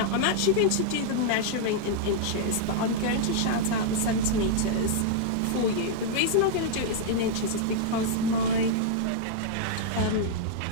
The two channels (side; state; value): both; different; correlation -0.01